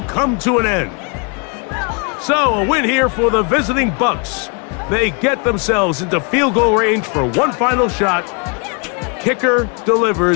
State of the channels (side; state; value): right; quieter; 34.5 dB